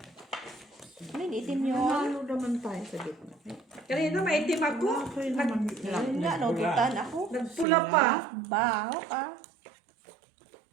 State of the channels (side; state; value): left; drops out; at 7.7 s